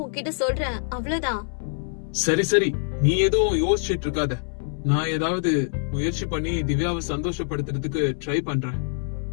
உன்கிட்ட சொல்றேன், அவ்வளவுதான். சரி சரி, நீ ஏதோ யோசிச்சுட்டு இருக்காத. நான் ஏதாவது முயற்சி பண்ணி திவ்யாவை சந்தோஷப்படுத்துறதுக்கு ட்ரை பண்றேன்.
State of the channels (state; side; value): silent; right; 62 dB below the other